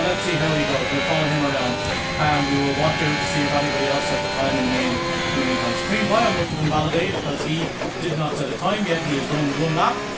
let's see how he goes. We'll follow him around and we will watch out to see if anybody else set the time in the meantime. Supreme Bio must have invalidated because he did not set a time yet. He has done one lap.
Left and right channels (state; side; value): identical; both; correlation 1.00